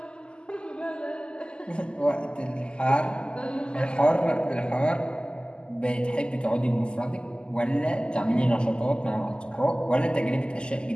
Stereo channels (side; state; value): right; late; 0.049 ms